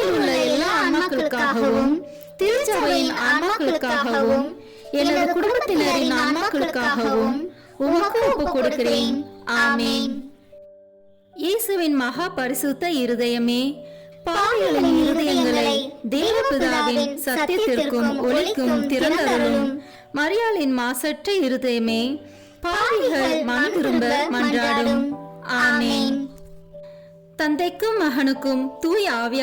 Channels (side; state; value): both; identical; correlation 1.00